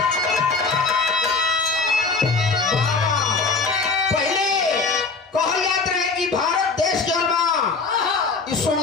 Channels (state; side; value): quieter; right; 4.3 dB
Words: पहले कहल जात रहे कि भारत देश जौन बा ई